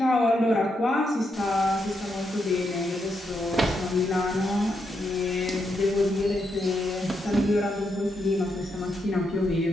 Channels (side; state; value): both; normal; correlation 0.81